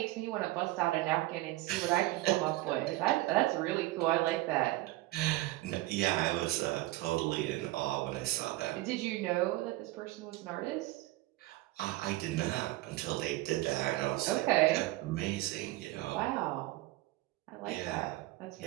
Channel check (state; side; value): quieter; left; 18.5 dB